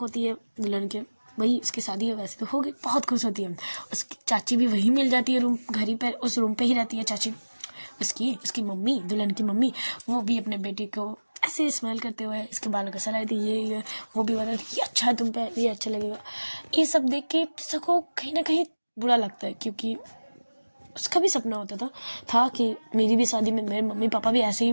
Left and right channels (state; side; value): inverted; both; correlation -1.00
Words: है दुल्हन के। वही उसकी शादी है, वैसे तो हो गई, बहुत खुश होती है। उसकी चाची भी वही मिल जाती है, रूम घर ही पर, उस रूम पे ही रहती है चाची। उसकी मम्मी, दुल्हन की मम्मी, वो भी अपने बेटे को ऐसे स्माइल करते हुए इसके बालों को सलाह दी, ये वो भी बता ये अच्छा है तुम पे, ये अच्छा लगेगा। ये सब देख के सबको कहीं ना कहीं बुरा लगता है, क्योंकि उसका भी सपना होता था कि मेरी भी शादी में मेरे मम्मी पापा भी ऐसे ही